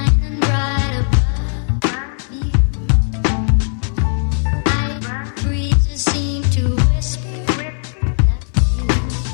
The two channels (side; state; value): right; silent; 61 dB below the other